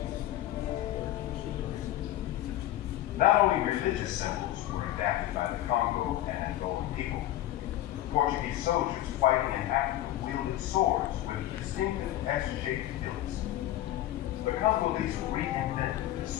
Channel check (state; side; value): quieter; right; 13.8 dB